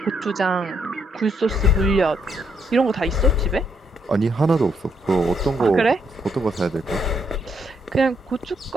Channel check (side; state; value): both; normal; correlation 0.75